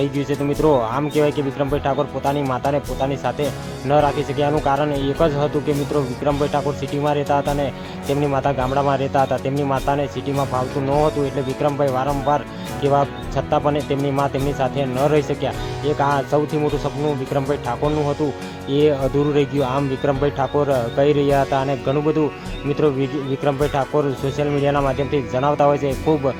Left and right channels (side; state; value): both; identical; correlation 1.00